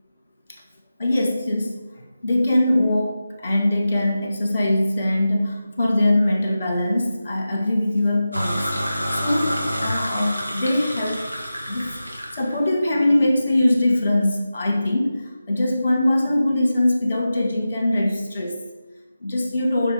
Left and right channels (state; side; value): inverted; both; correlation -0.93